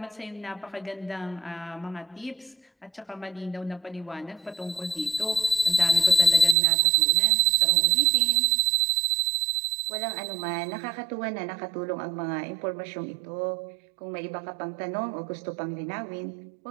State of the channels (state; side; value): drops out; left; at 6.6 s